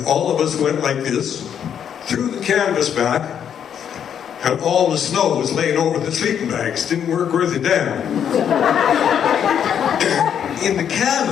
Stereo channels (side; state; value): right; quieter; 8.6 dB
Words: all of us went like this, threw the canvas back, and all the snow was laying over the sleeping bags. Didn't work worth a damn. In the